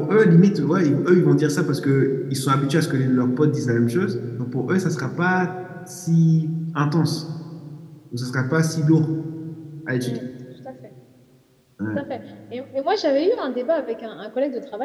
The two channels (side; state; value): both; identical; correlation 1.00